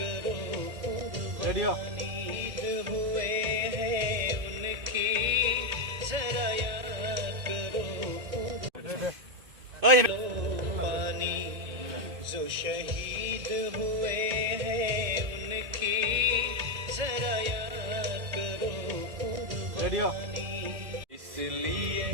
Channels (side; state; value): left; late; 1.8 ms